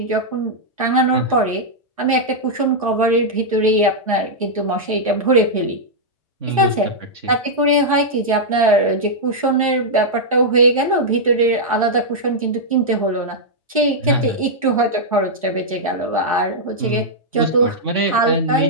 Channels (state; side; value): normal; both; correlation -0.07